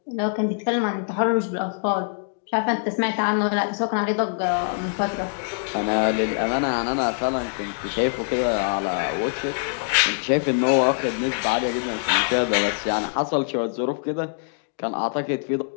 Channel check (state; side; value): silent; right; digital silence